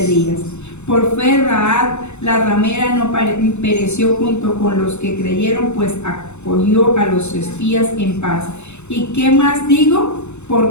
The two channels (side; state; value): right; late; 0.82 ms